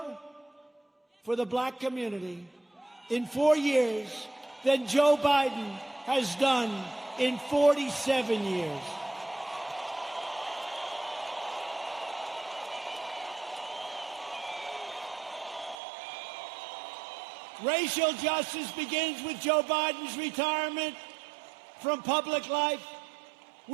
for the black community in 4 years than Joe Biden has done in 47 years. Racial justice begins with Joe Biden's retirement from public life.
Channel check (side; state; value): left; drops out; at 15.8 s